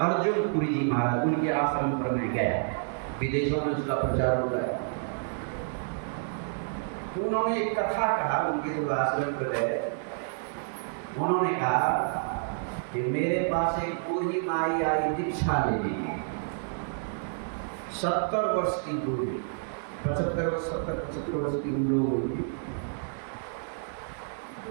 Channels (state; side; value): silent; left; digital silence